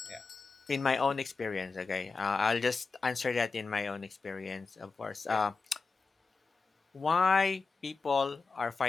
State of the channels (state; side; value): quieter; right; 4.3 dB